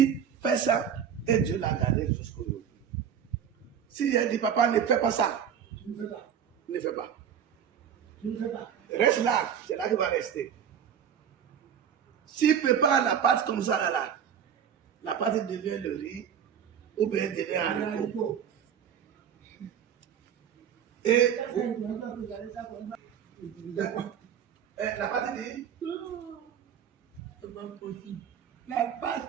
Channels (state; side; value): quieter; left; 8.4 dB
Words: fais ça, et Dieu l'a gardé jusqu'aujourd'hui. Si j'ai dit papa ne fais pas ça, Tu ne fais pas. ne fais pas. Tu ne fais pas. Reste là, c'est là qu'il va rester. S'il prépare la pâte comme ça, là, la pâte devient le riz, ou bien devient un haricot. Et la partie dit, C'est pas possible. La